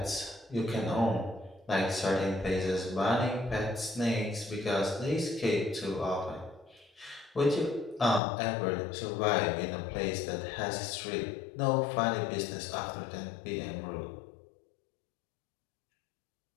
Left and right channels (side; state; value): right; drops out; at 8.2 s